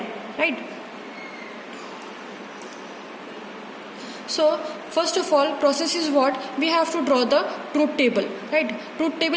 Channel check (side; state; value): both; identical; correlation 1.00